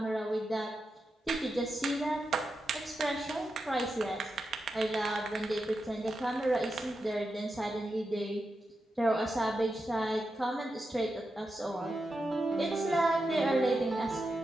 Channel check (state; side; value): normal; both; correlation 0.88